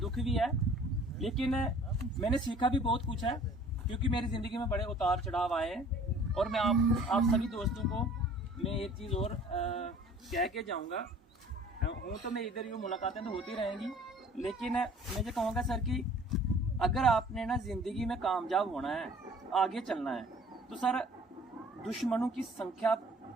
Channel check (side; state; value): both; normal; correlation 0.51